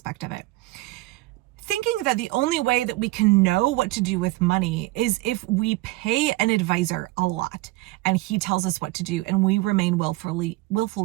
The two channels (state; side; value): quieter; left; 19.4 dB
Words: of it. Thinking that the only way that we can know what to do with money is if we pay an advisor a lot and he tells us what to do and we remain willfully